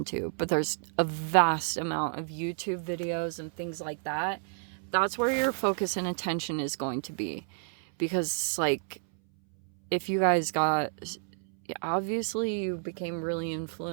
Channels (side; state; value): left; silent; 58 dB below the other